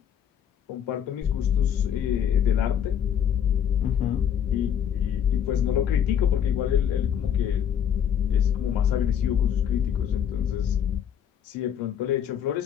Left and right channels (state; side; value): quieter; right; 8.9 dB